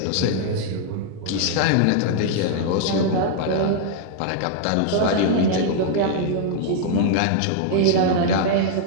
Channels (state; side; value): different; both; correlation -0.01